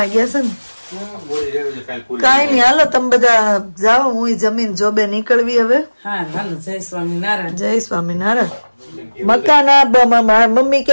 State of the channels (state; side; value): inverted; both; correlation -1.00